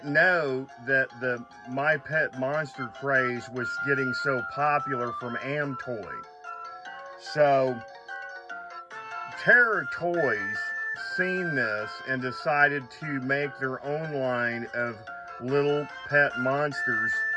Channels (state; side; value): identical; both; correlation 1.00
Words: know that the My Pet Monster craze was getting so popular from Amtoy. So Terra Toys seen this and decided to make their own line of little pet monsters